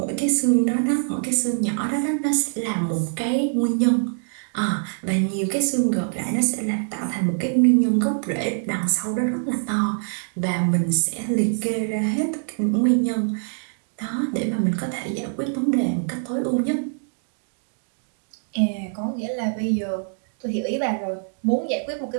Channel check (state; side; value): silent; left; digital silence